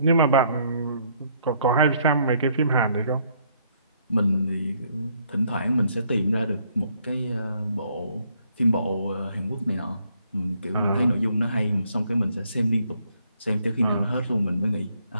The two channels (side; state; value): both; inverted; correlation -0.68